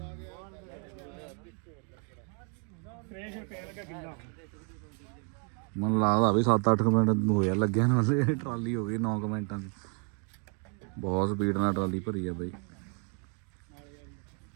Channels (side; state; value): left; quieter; 40.0 dB